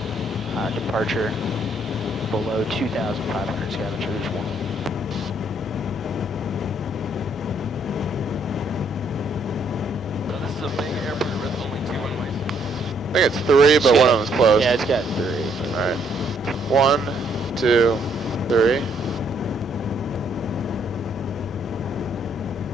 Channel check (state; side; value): normal; both; correlation 0.69